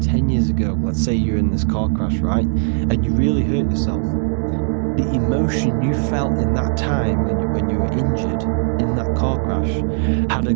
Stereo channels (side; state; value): left; silent; digital silence